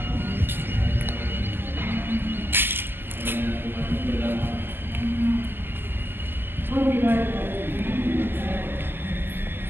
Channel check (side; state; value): left; late; 0.098 ms